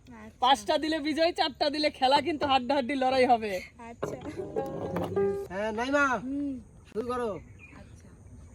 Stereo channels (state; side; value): identical; both; correlation 1.00